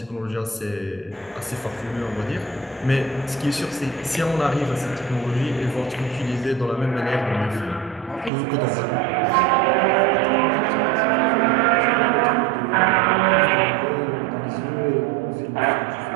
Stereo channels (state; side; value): drops out; left; at 8.3 s